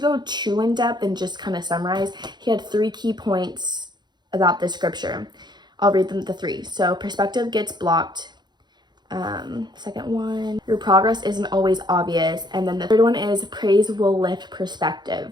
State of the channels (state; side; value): late; left; 0.21 ms